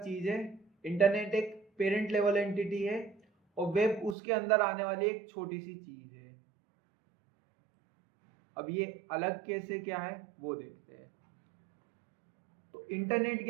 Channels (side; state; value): left; drops out; at 4.2 s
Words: चीज है। इंटरनेट एक पेरेंट लेवल एंटिटी है और वेब उसके अंदर आने वाली एक छोटी सी चीज है। अब ये अलग कैसे क्या है वो देखते हैं। तो इंटरनेट